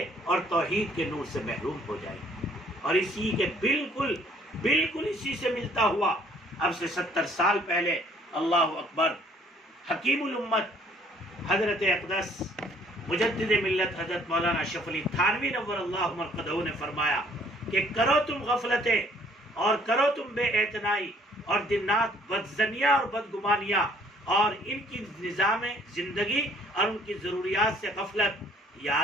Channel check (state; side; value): normal; both; correlation 0.60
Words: اور توحید کے نور سے محروم ہو جائیں گی۔ اور اسی کے بالکل اسی سے ملتا ہوا اب سے 70 سال پہلے اللہ اکبر حکیم الامت حضرت اقدس مجدد ملت حضرت مولانا اشرف علی تھانوی نور اللہ مرقدہ نے فرمایا کہ کرو تم غفلتیں اور کرو تم بے اعتنائی اور دن رات بدظنیاں اور بدگمانیاں اور ان کی نظام زندگی اور ان کی ضروریات سے غفلت،